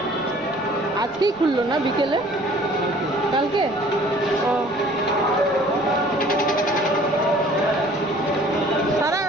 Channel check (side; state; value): right; noise; rumble, 25 dB below the sound